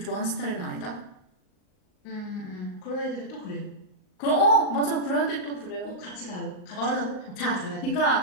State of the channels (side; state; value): right; late; 38 ms